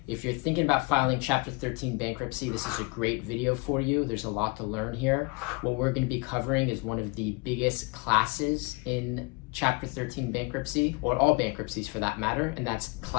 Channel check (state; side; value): quieter; right; 27.4 dB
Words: If you're thinking about filing Chapter 13 bankruptcy, this is a great video for you. There's a lot to learn here. What we're going to be covering is one of the biggest classes in Chapter 13 bankruptcy, or all bankruptcies for that matter, and that's